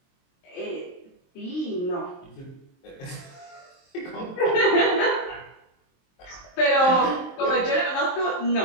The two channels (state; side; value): late; right; 23 ms